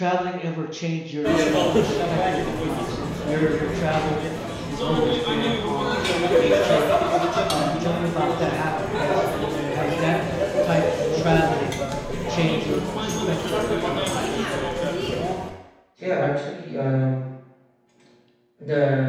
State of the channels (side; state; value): both; identical; correlation 1.00